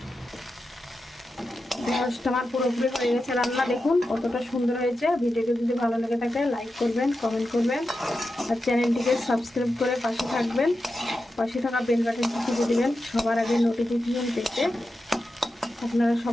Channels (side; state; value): both; normal; correlation 0.90